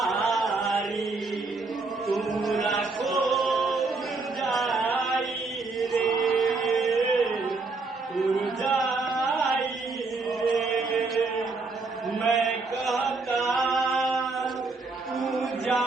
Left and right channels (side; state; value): left; quieter; 3.8 dB